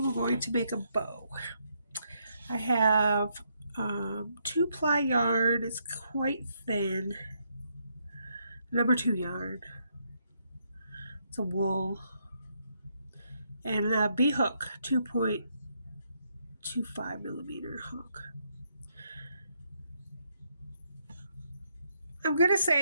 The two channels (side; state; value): both; inverted; correlation -0.76